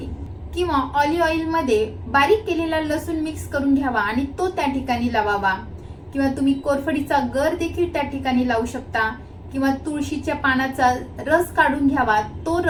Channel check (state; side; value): identical; both; correlation 1.00